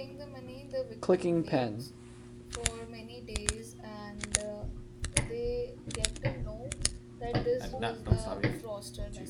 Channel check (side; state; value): both; identical; correlation 1.00